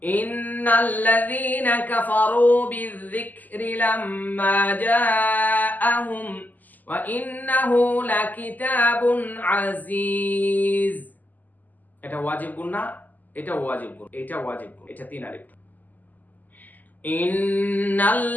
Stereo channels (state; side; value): late; right; 0.083 ms